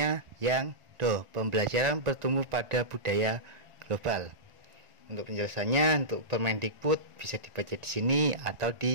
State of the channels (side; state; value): left; late; 1.4 ms